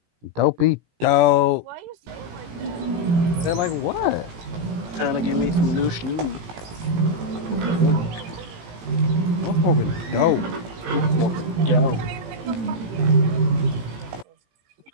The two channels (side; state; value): left; late; 18 ms